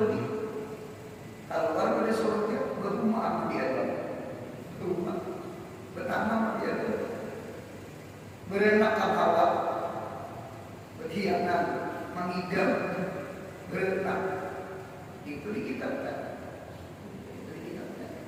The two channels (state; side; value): identical; both; correlation 1.00